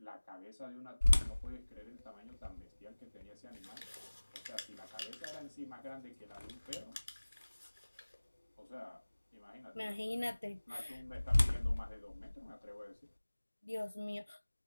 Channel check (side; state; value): both; inverted; correlation -1.00